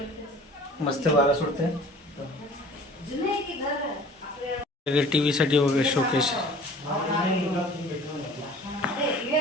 मस्त वारा सुटते. टीव्ही साठी वगैरे शोकेस.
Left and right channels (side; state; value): both; normal; correlation 0.47